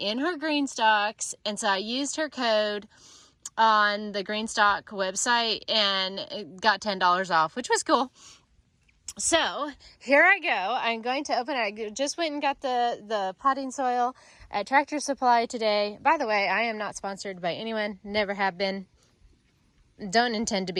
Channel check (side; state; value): both; identical; correlation 1.00